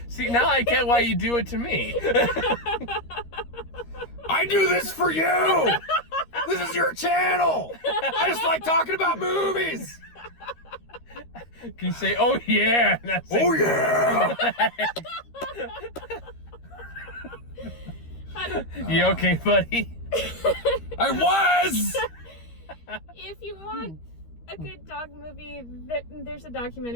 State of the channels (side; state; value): right; late; 13 ms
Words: See, now I get why you do it to me. I do this for you. This is your channel. I just like talking about movies. Can you say, oh yeah? Oh yeah. You okay, buddy? I was. If you want a good dog movie, there's a